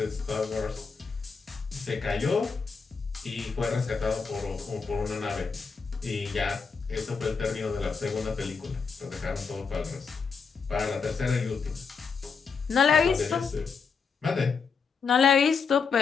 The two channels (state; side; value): quieter; right; 5.4 dB